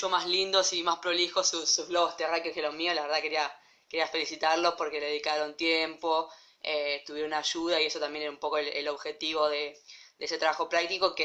más lindos y más prolijos sus globos terráqueos que los míos. La verdad quería felicitarlos porque le dedicaron tiempo, tuvieron ayuda y eso también era un poco el objetivo de ese trabajo práctico,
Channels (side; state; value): both; identical; correlation 1.00